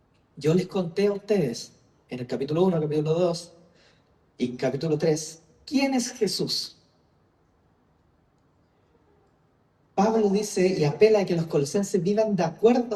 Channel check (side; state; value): both; identical; correlation 1.00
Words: yo les conté a ustedes en el capítulo 1, capítulo 2 y capítulo 3, ¿quién es Jesús? Pablo dice y apela a que los colosenses vivan de